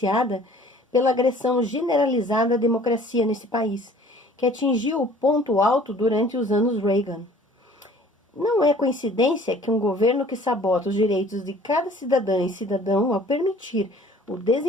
pela agressão generalizada à democracia nesse país, que atingiu o ponto alto durante os anos Reagan. Não é coincidência que um governo que sabota os direitos de cada cidadã e cidadão ao permitir o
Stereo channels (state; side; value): normal; both; correlation 0.51